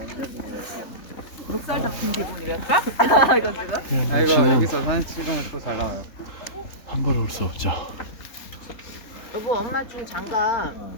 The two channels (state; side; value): late; right; 3.8 ms